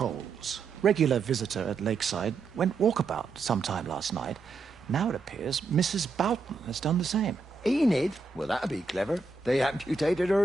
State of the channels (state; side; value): quieter; left; 4.4 dB